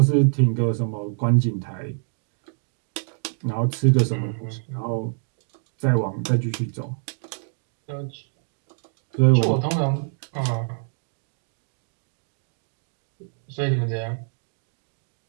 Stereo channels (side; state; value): left; silent; digital silence